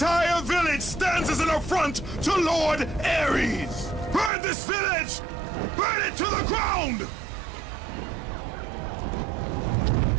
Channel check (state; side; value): drops out; left; at 4.3 s